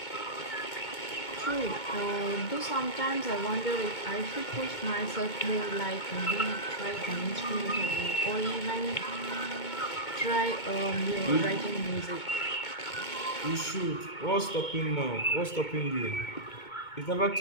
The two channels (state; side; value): late; right; 2.2 ms